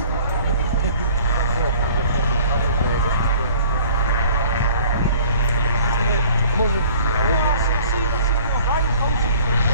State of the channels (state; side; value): inverted; both; correlation -0.52